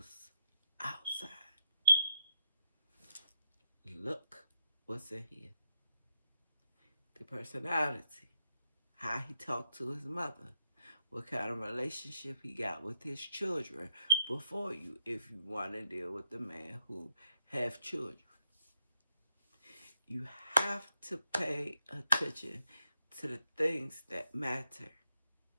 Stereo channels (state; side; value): inverted; both; correlation -0.79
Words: outside. Look what's in here. The personality. How he talked to his mother. What kind of relationship he got with his children before you, if you want to deal with the man who have children. You have to pay attention to the things that matter.